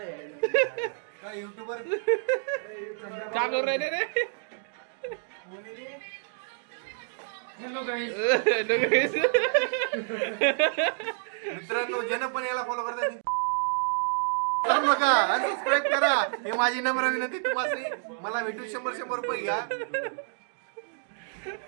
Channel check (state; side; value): silent; left; digital silence